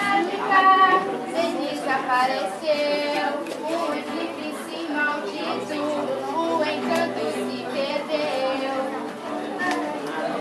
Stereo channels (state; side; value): identical; both; correlation 1.00